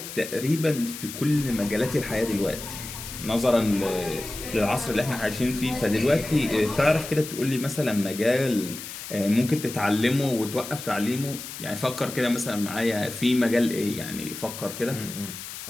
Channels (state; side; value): noise; left; hiss, 10 dB below the sound